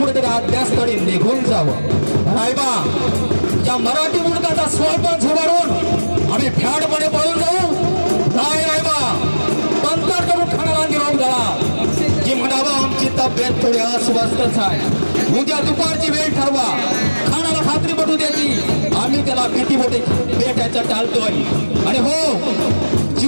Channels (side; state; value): both; inverted; correlation -1.00